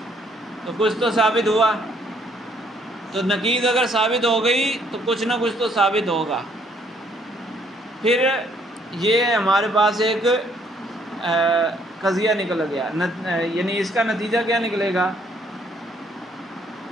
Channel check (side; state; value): both; normal; correlation 0.66